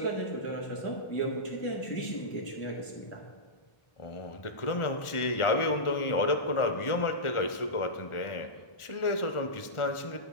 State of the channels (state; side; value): late; right; 1.4 ms